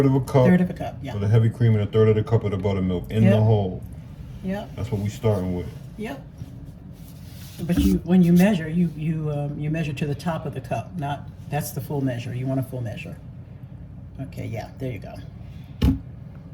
of a cup. 1/3 of a cup, yeah. For the heavy cream and 1/3 of the cup of the buttermilk in the hole. Yep. That's what we're starting with. Yep. But when you measure, you measure to the top of the cup. That's the full measure. You want a full measure. Okay, yeah, there you go.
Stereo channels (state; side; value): identical; both; correlation 1.00